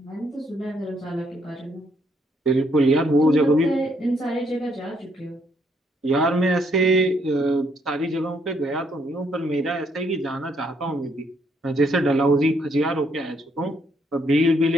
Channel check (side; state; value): both; normal; correlation 0.71